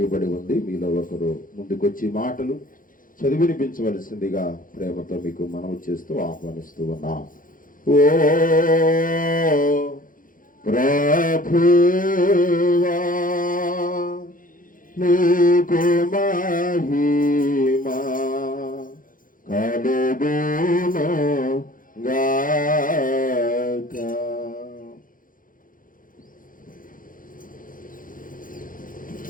ఉంది. మీలో ఒకరు ముందుకొచ్చి మాటలు చదివినిపించవలసిందిగా ప్రేమతో మీకు మనవి చేస్తూ ఆహ్వానిస్తూ ఉన్నాం. ఓ ప్రభువా నీకు మహిమ కలుగును గాక.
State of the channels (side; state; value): right; late; 0.40 ms